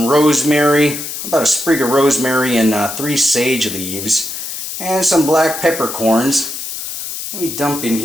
rosemary, about a sprig of rosemary and 3 sage leaves, and some black peppercorns. Let me dump in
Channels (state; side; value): noise; left; hiss, 7 dB below the sound